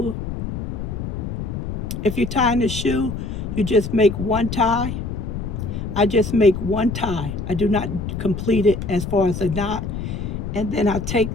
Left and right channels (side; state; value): left; noise; rumble, 5 dB below the sound